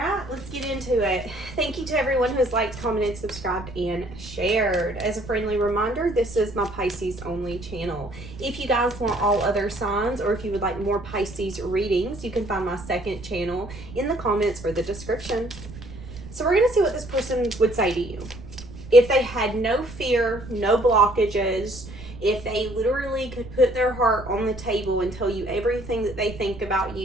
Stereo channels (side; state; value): right; noise; rumble, 14 dB below the sound